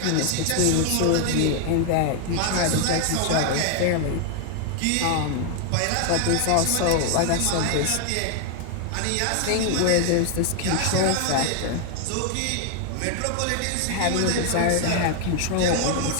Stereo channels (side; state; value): both; different; correlation 0.00